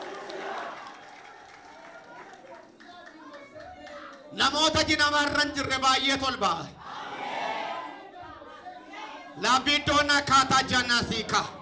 Namoota jinamarra hin jirre baay'ee tolbaa. Laabiddoon akkaataa jannasiika.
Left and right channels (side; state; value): both; identical; correlation 1.00